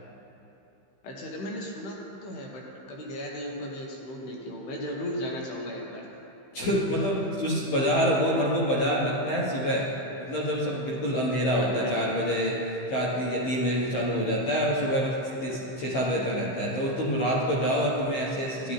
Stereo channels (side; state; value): right; late; 15 ms